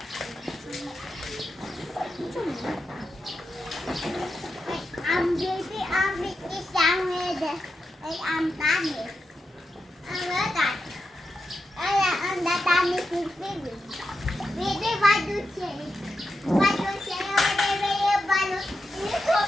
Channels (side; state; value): both; normal; correlation 0.88